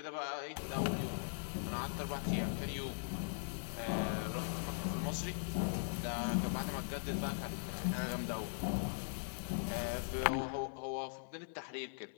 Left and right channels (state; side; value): silent; right; 51 dB below the other